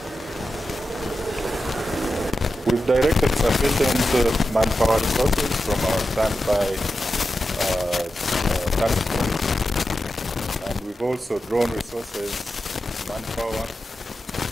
We've directed sufficient manpower resources from our standby task force, and we've also drawn resources, manpower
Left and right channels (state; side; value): normal; both; correlation 0.90